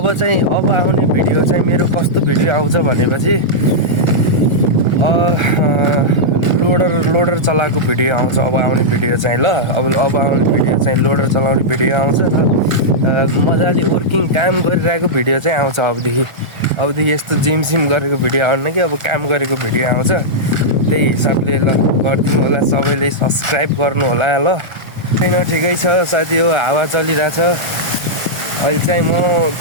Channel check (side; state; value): left; late; 1.4 ms